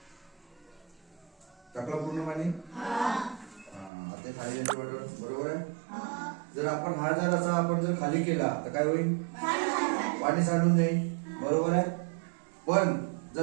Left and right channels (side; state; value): left; drops out; at 3.9 s